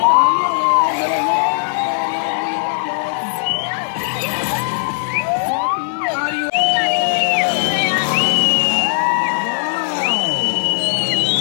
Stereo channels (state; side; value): silent; right; digital silence